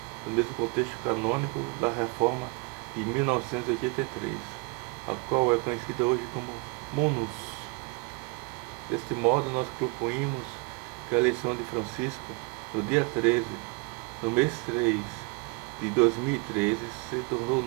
no mesmo contexto canônico da Reforma de 1983, a qual é conhecida hoje como munus. Deste modo, nós concluímos que a eleição de Francisco, no dia 13, no mês 3 de 2013, se tornou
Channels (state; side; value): quieter; left; 29.8 dB